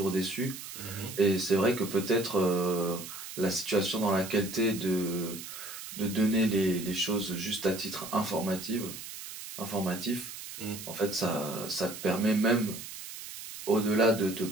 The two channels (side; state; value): right; noise; hiss, 11 dB below the sound